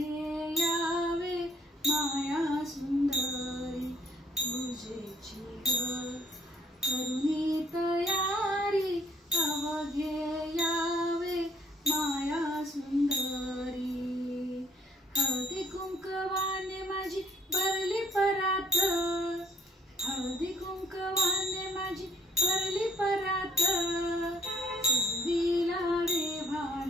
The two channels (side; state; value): both; normal; correlation 0.62